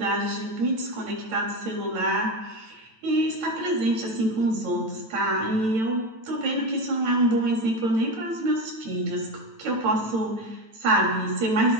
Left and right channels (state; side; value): late; left; 9.1 ms